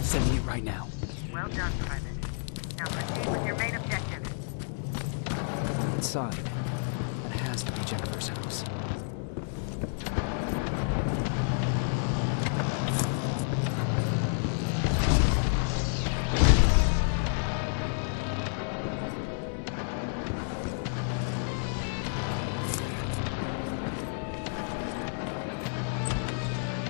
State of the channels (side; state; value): right; silent; digital silence